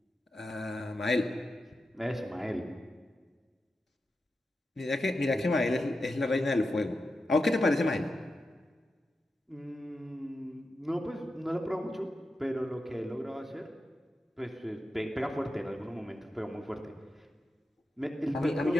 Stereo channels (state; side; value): normal; both; correlation 0.90